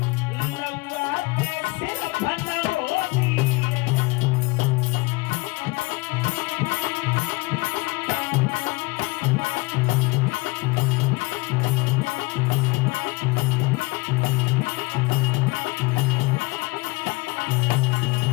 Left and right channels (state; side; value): quieter; right; 24.0 dB